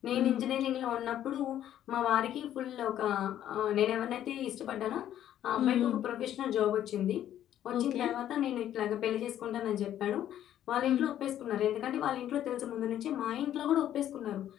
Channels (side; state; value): right; quieter; 11.4 dB